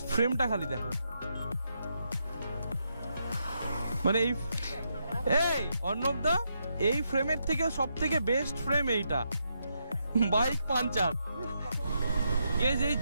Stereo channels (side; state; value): both; inverted; correlation -0.81